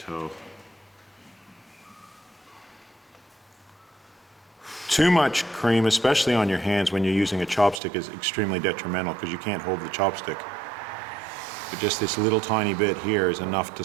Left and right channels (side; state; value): left; drops out; at 7.8 s